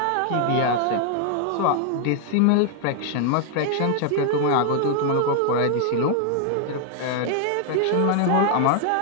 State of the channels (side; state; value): both; different; correlation 0.00